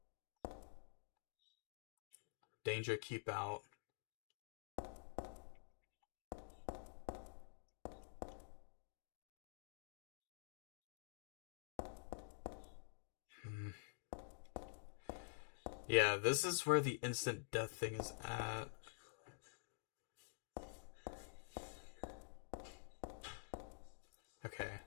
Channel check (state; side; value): silent; right; digital silence